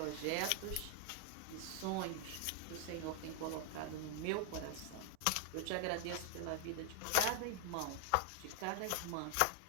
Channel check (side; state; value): both; different; correlation 0.00